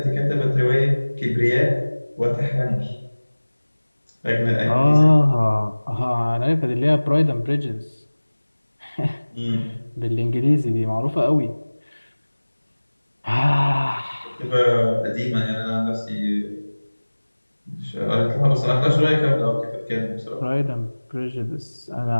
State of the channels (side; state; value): both; inverted; correlation -1.00